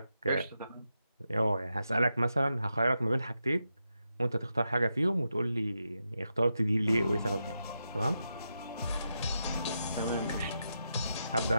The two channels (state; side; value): inverted; both; correlation -0.86